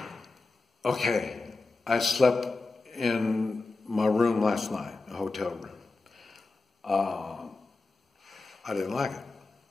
Okay, I slept in my room last night, a hotel room. I didn't like it.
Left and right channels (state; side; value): quieter; right; 3.6 dB